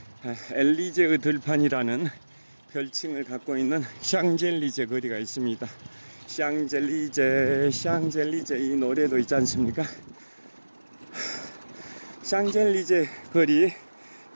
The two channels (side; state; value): both; inverted; correlation -1.00